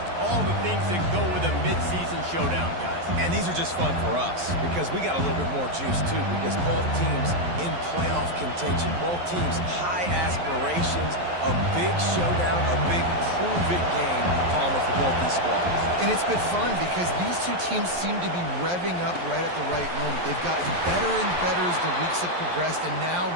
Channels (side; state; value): left; late; 11 ms